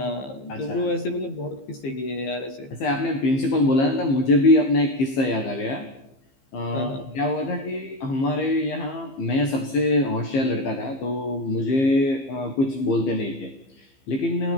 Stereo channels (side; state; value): right; late; 15 ms